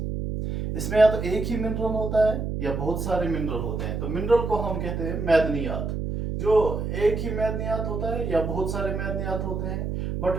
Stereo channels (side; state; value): right; noise; hum, 3 dB below the sound